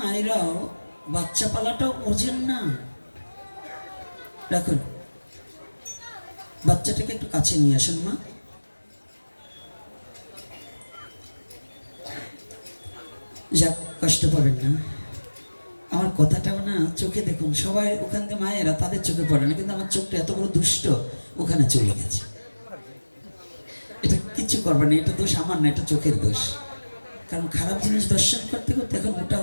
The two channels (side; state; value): both; inverted; correlation -1.00